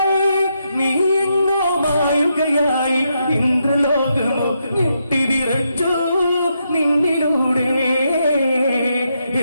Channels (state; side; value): inverted; both; correlation -0.81